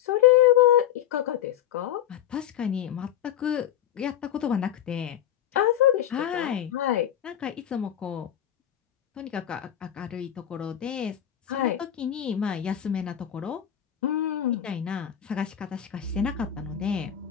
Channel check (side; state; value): right; quieter; 10.8 dB